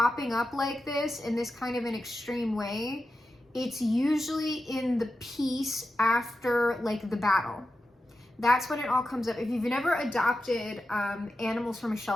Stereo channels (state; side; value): normal; both; correlation 0.91